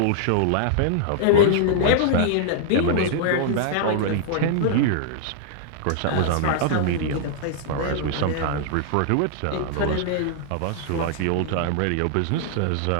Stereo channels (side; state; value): both; different; correlation -0.01